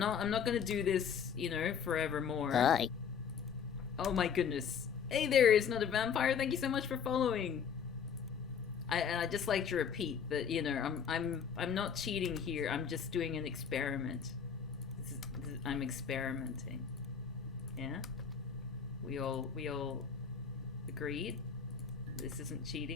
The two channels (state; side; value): quieter; right; 7.1 dB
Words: gonna do this, forevermore. Hi. Oh my goodness. Hey there, is not a vampire. Thank you so much for following. I just like to repeat that, I'm not cheating here. I'm just doing an experiment. I'm experimenting. Yeah? We all agreed? This isn't